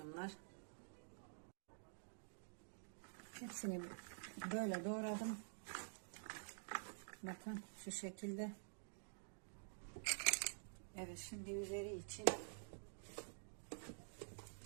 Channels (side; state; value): left; silent; digital silence